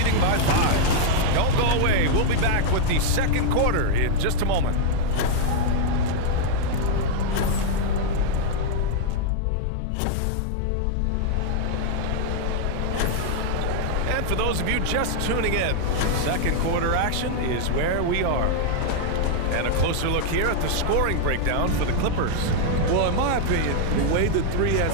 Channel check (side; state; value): both; different; correlation -0.01